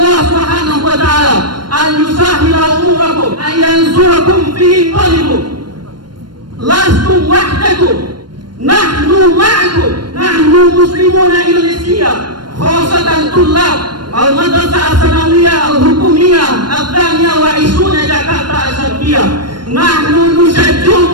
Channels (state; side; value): late; left; 0.72 ms